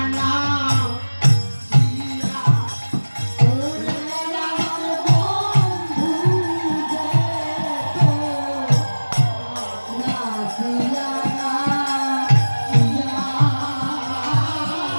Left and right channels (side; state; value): both; inverted; correlation -1.00